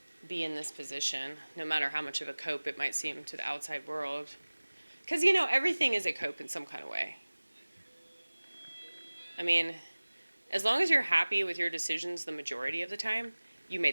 be in this position, no matter how much of a cope it might seem to the outside world. Because, everything is a cope in some kind of way. I mean, as long as you're happy with your decisions the majority of the time, you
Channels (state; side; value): inverted; both; correlation -1.00